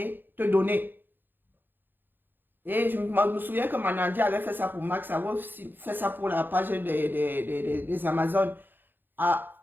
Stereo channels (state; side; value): late; left; 0.095 ms